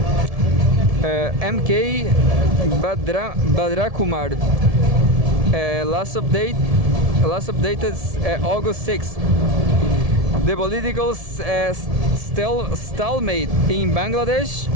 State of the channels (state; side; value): late; left; 1.7 ms